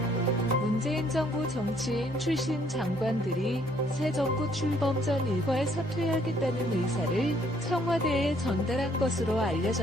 문재인 정부 정치인 출신 장관들이 새 정부 출범 전 일괄 사퇴하겠다는 의사를 청와대에 전달한 것으로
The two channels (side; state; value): both; normal; correlation 0.65